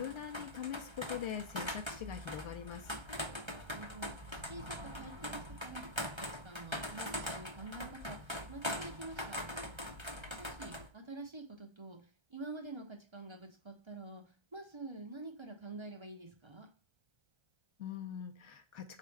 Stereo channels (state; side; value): late; left; 1.3 ms